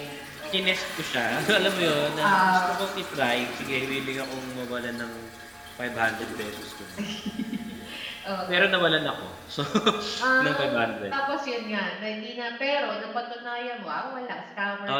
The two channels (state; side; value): identical; both; correlation 1.00